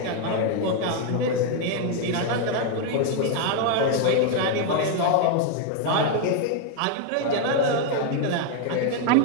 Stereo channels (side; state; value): both; different; correlation 0.01